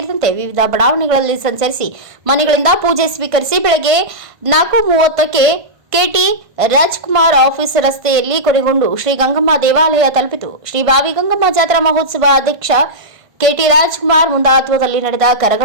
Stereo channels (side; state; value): left; late; 1.5 ms